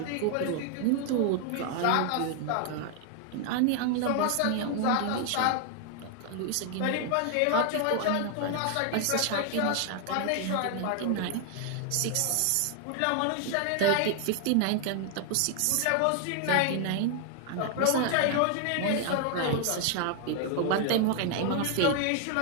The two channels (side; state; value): both; different; correlation 0.00